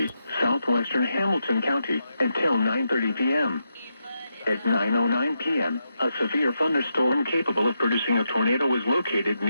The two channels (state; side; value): inverted; both; correlation -0.84